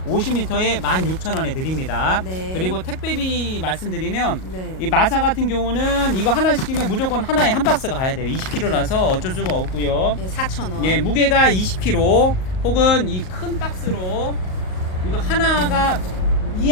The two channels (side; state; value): right; late; 38 ms